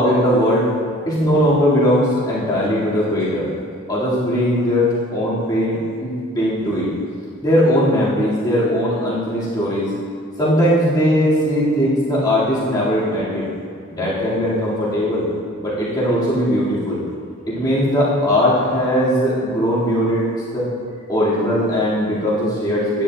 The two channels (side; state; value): both; normal; correlation 0.49